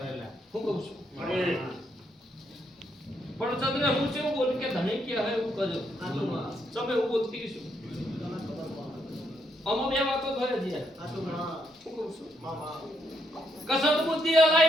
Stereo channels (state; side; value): normal; both; correlation 0.76